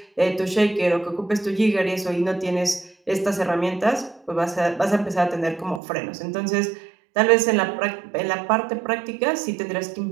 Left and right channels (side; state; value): left; drops out; at 5.8 s